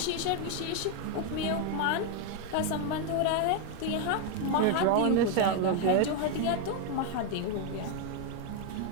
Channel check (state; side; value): different; both; correlation 0.01